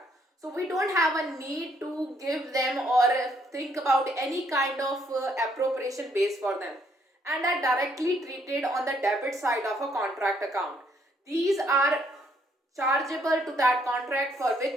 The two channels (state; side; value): normal; both; correlation 0.69